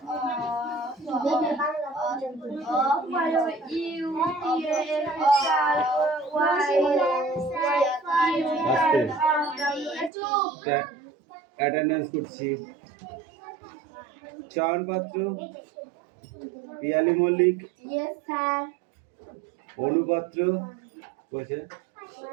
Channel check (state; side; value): drops out; left; at 10.1 s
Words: অ্যাটেন্ডেন্স করছি। চয়ন পাত্র, পিয়ালি মল্লিক, অনুপাত্র,